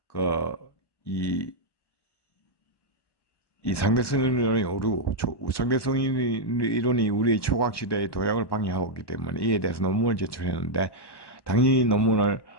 이 상대성 이론이 상대성 이론이 우리의 초과학 시대의 도약을 방해하고 있기 때문에 이에 대해서 논문을 제출했는데 당연히 논문을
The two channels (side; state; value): right; late; 1.1 ms